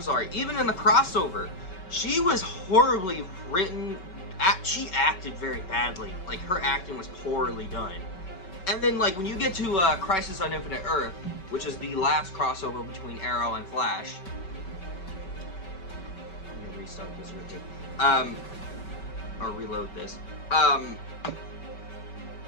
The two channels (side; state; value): right; late; 5.2 ms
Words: the crossover, she was horribly written. She acted very badly. Like, her acting was poorly done. And then, like, when you get to Crisis on Infinite Earth, which is the last crossover between Arrow and Flash. I'm gonna restart this real quick. Or reload this.